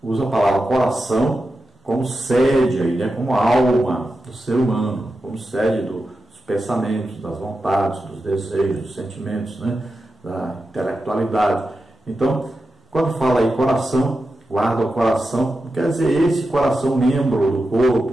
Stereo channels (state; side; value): normal; both; correlation 0.90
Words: Usa a palavra coração como sede, aí, né? Como alma do ser humano, como sede dos pensamentos, das vontades, dos desejos, dos sentimentos, né? Da intelectualidade. Então, quando fala aí coração, guarda o coração, não quer dizer esse coração membro do